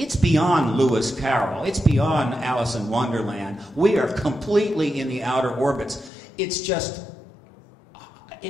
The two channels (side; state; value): right; drops out; at 6.1 s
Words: beyond Lewis Carroll. It's beyond Alice in Wonderland. We are completely in the outer orbits. It's just,